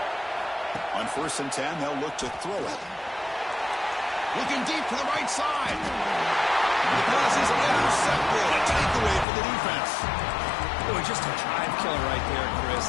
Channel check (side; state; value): right; drops out; at 9.2 s